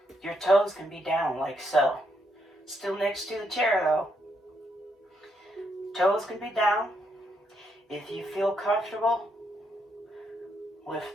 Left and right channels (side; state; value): both; normal; correlation 0.77